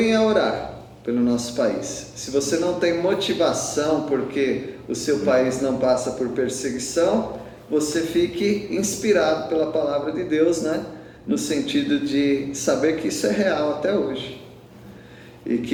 a orar pelo nosso país. Se você não tem motivação porque o seu país não passa por perseguição, você fique inspirado pela palavra de Deus, né? No sentido de saber que isso é real até hoje. E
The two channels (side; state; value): both; identical; correlation 1.00